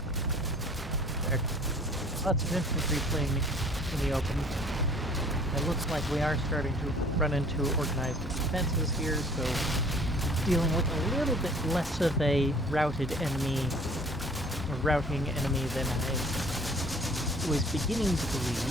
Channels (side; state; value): both; normal; correlation 0.52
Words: There. Lots of infantry playing in the open. It looks like we are starting to run into organized defenses here, so dealing with a little bit less of a routed enemy, or routing enemy than I was beginning to